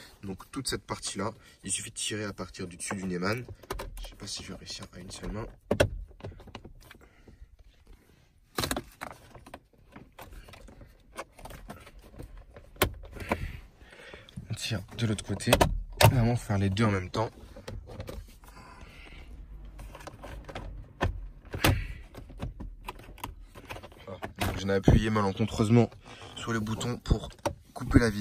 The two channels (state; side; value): identical; both; correlation 1.00